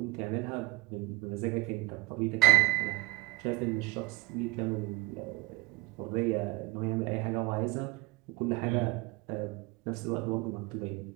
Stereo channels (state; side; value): quieter; left; 22.3 dB